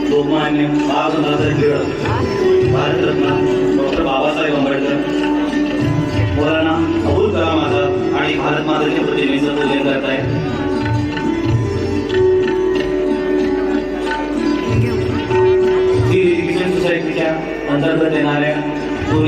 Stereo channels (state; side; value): identical; both; correlation 1.00